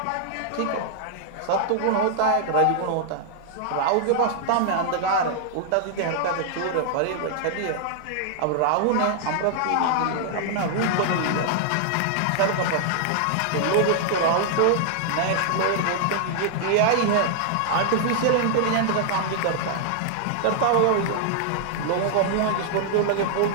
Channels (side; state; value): both; different; correlation -0.01